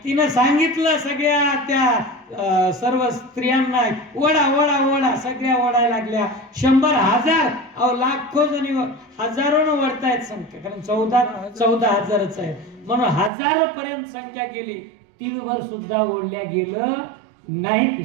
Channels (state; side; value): drops out; left; at 13.3 s